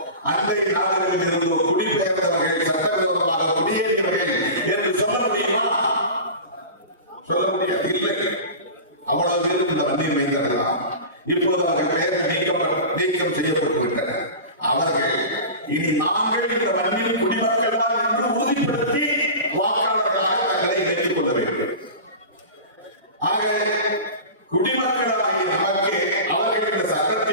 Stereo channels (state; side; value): inverted; both; correlation -0.32